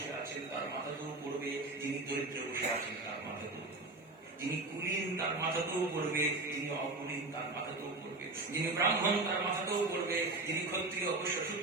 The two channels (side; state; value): left; quieter; 3.2 dB